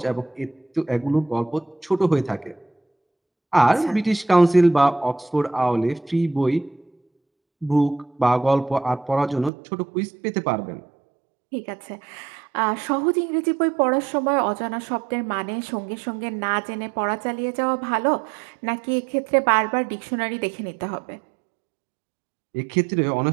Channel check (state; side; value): drops out; left; at 9.5 s